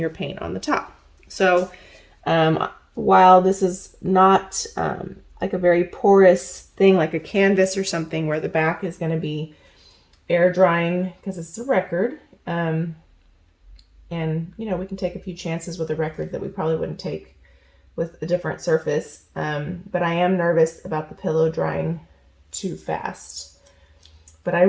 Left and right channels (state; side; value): identical; both; correlation 1.00